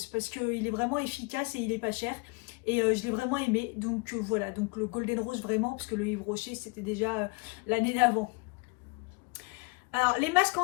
parce qu'il est vraiment efficace et il est pas cher. Et je l'ai vraiment aimé, donc voilà, donc le Golden Rose vraiment, parce que le Yves Rocher c'était déjà l'année d'avant. Alors les masques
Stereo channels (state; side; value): quieter; right; 30.0 dB